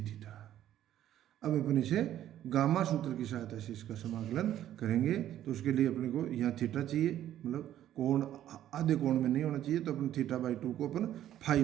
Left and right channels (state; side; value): quieter; left; 11.9 dB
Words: theta. अब अपन इसे गामा सूत्र की सहायता से इसका समाकलन करेंगे। तो उसके लिए अपने को यहाँ थीटा चाहिए, मतलब कोण आधे कोण में नहीं होना चाहिए, तो अपन थीटा बाई 2 को अपन फाई